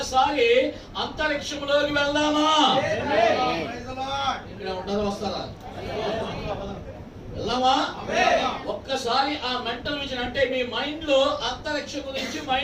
అంతరిక్షంలోకి వెళ్దామా? ఇక్కడ ఉంటారా? వస్తారా? వెళ్దామా? ఒక్కసారి ఆ మెంటల్ విజన్ అంటే మీ మైండ్ లో అంతరిక్షం గురించి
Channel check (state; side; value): identical; both; correlation 1.00